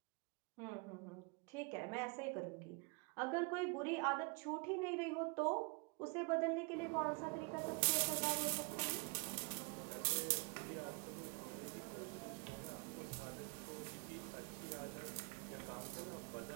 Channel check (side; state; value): left; quieter; 32.4 dB